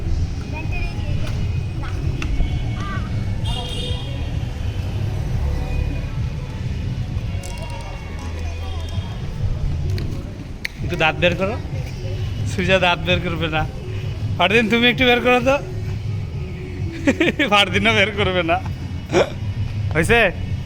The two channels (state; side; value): identical; both; correlation 1.00